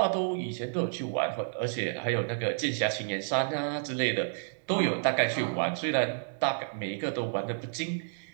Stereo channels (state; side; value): silent; left; digital silence